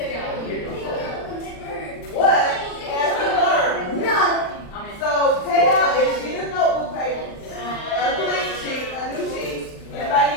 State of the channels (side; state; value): right; late; 39 ms